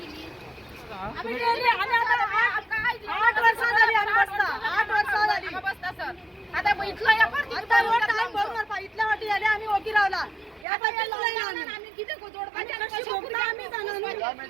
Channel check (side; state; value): left; drops out; at 10.7 s